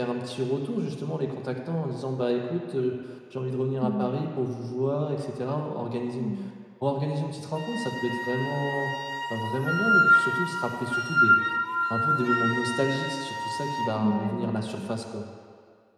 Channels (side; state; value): both; identical; correlation 1.00